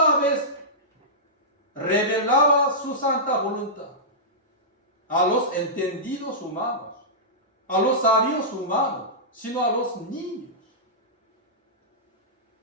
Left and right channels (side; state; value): both; normal; correlation -0.15